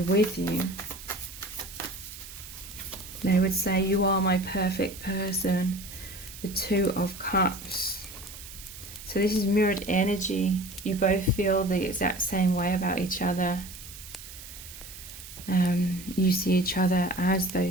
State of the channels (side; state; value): right; noise; hiss, 14 dB below the sound